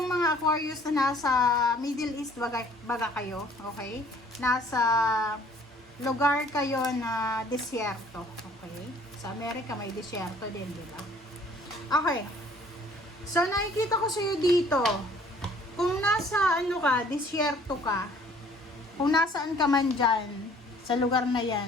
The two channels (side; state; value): both; normal; correlation 0.56